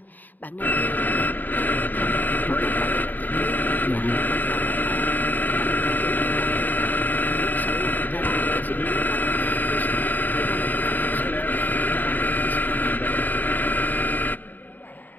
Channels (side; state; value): right; late; 0.086 ms